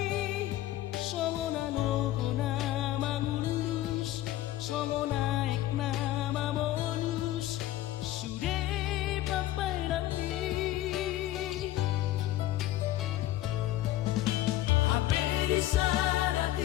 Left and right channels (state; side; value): quieter; right; 14.7 dB